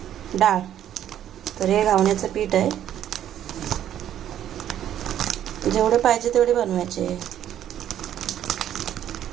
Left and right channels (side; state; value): left; quieter; 10.9 dB